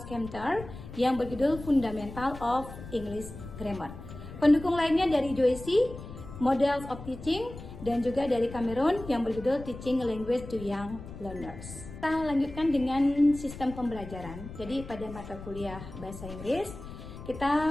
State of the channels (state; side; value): noise; left; rumble, 13 dB below the sound